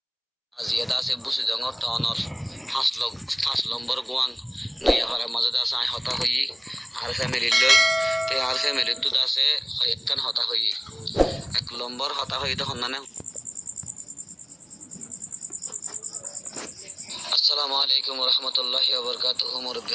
Azia da se busi dongor tonor has lombar guang naya para mazada sai hota hoyi R family লই তে আর family তো আছে একখান হতা হই এক নম্বর হতা হই তখন না আসসালামু আলাইকুম ওয়া রাহমাতুল্লাহি ওয়া বারাকাতুহু মুরব্বি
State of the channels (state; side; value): identical; both; correlation 1.00